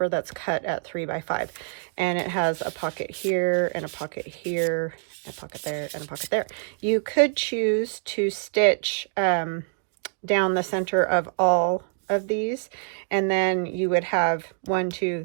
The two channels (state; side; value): silent; left; digital silence